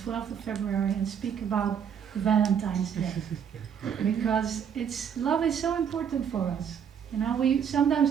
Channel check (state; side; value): quieter; left; 7.8 dB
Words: of February and speak about Valentine's Day because love is so important for us. You know, we